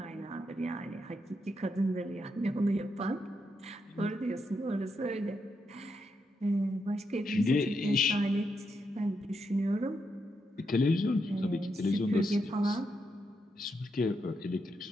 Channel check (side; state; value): both; normal; correlation 0.82